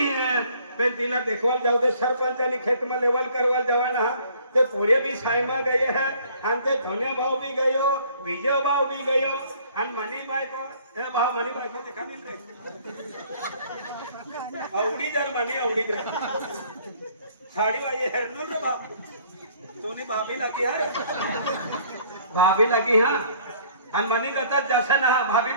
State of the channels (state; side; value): inverted; both; correlation -0.58